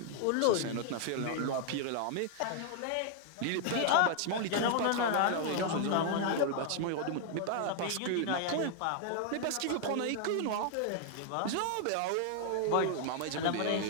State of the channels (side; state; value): both; different; correlation 0.00